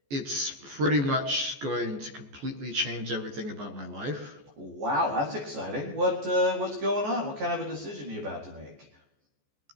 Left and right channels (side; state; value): left; late; 14 ms